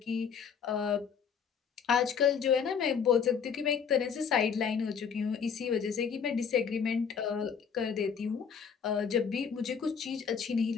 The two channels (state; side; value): quieter; right; 6.8 dB